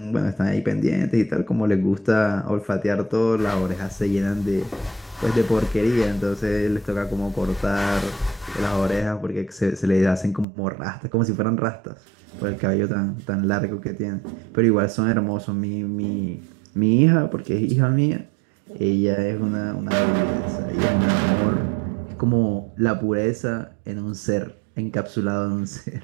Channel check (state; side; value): drops out; left; at 10.5 s